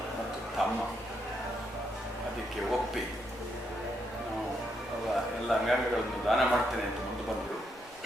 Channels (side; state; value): left; noise; rumble, 25 dB below the sound